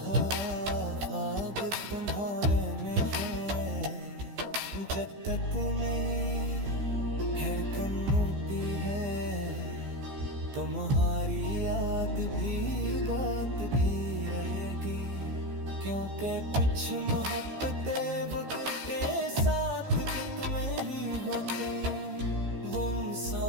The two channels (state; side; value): late; left; 15 ms